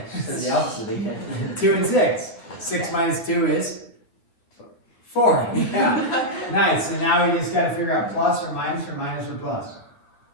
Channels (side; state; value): right; late; 9.2 ms